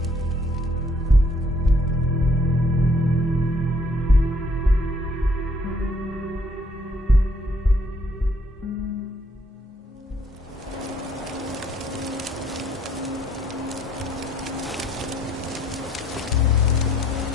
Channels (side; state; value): both; normal; correlation 0.65